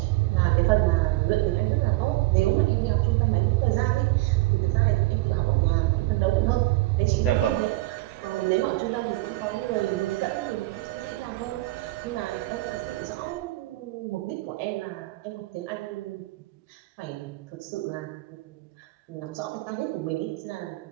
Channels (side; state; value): left; quieter; 19.7 dB